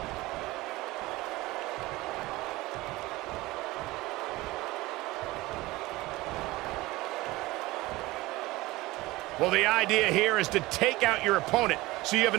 Well, the idea here is to take out your opponent so you have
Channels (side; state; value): left; quieter; 19.7 dB